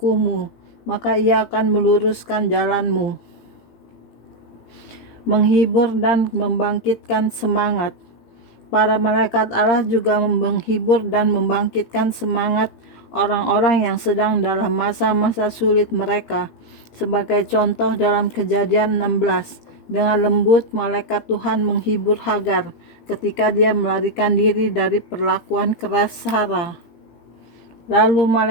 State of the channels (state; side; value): late; right; 18 ms